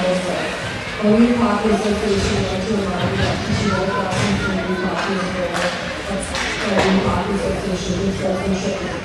way. Only Hockey Association wants to remind you that PTO classes and new hockey is rare. That's new Hockey Association, which sportsmanship is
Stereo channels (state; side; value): identical; both; correlation 1.00